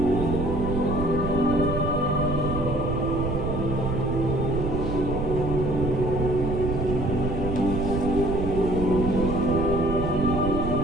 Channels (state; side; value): noise; right; rumble, 3 dB below the sound